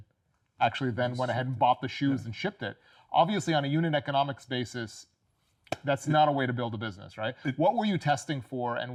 actually then went ahead and bought the shoes and shipped it. Obviously, on a unit economics basis, that's not a way to build a business, right? What were you testing for,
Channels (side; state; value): both; identical; correlation 1.00